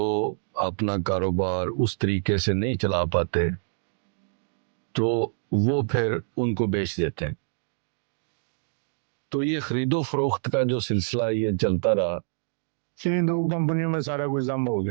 اپنا کاروبار اس طریقے سے نہیں چلا پاتے تو وہ پھر ان کو بیچ دیتے ہیں. تو یہ خرید و فروخت کا جو سلسلہ یہ چلتا رہا. ان دو کمپنیوں میں سارا کچھ ضم ہو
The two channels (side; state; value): left; silent; digital silence